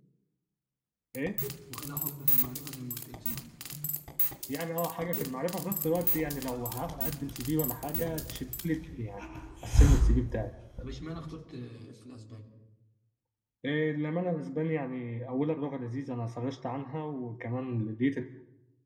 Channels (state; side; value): identical; both; correlation 1.00